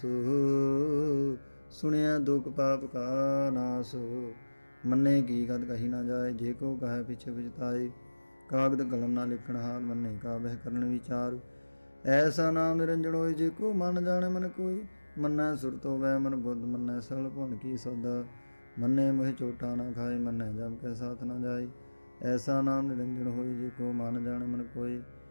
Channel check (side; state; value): both; inverted; correlation -1.00